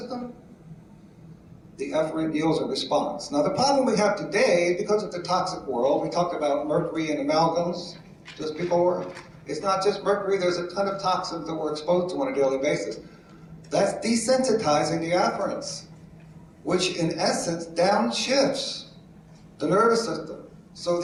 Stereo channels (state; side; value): identical; both; correlation 1.00